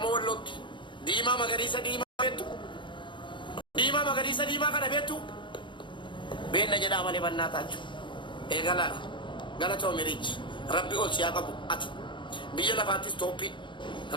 wallootti diimaa magariisa diimaa beektu. Diimaa magariisa diimaa kana beektu. Beenna jedhaa malee bannaa taachuu. Eegalaadha. Galatoomi riichi. Rabbi ol siyaa qabu ati. Biyya lafaattis tooppii.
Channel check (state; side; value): late; right; 0.23 ms